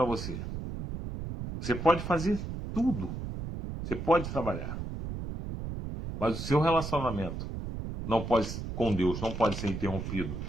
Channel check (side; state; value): right; noise; rumble, 6 dB below the sound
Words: você. Você pode fazer tudo, você pode trabalhar, mas o seu relacionamento não pode, com Deus não pode ser interrompido